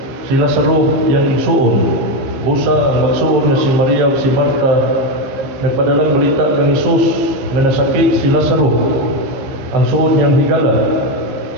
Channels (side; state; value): left; late; 15 ms